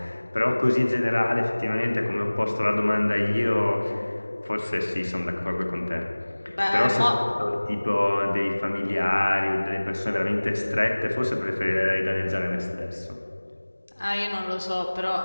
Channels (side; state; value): both; inverted; correlation -1.00